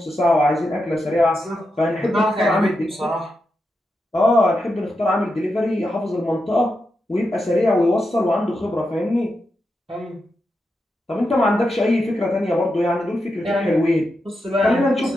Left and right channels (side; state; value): both; normal; correlation 0.87